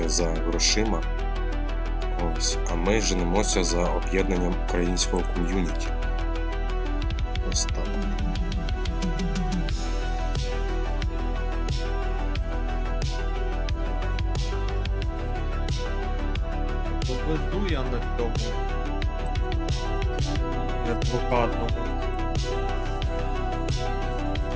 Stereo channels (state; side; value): identical; both; correlation 1.00